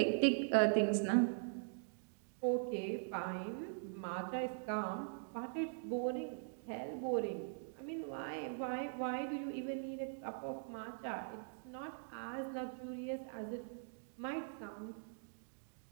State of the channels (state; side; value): silent; left; digital silence